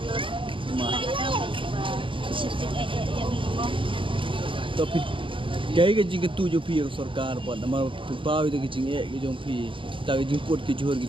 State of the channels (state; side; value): late; left; 0.25 ms